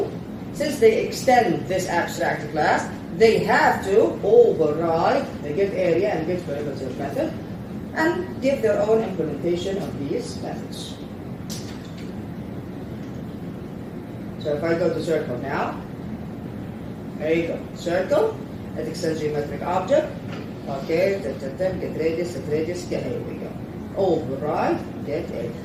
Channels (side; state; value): both; identical; correlation 1.00